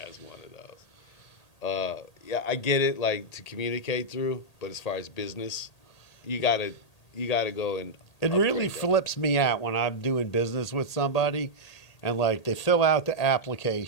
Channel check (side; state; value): right; late; 1.8 ms